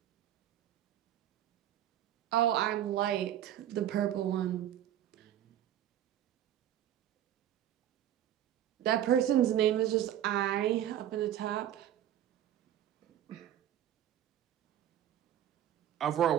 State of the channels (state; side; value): quieter; left; 11.4 dB